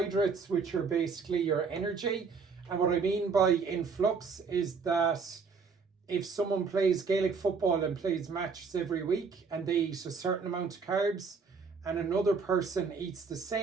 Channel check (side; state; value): left; quieter; 5.2 dB